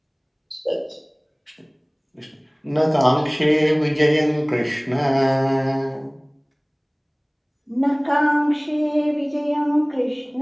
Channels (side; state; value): both; identical; correlation 1.00